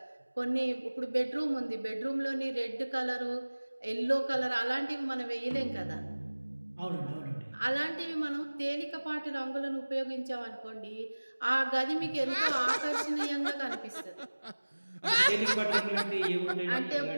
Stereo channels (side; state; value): both; inverted; correlation -1.00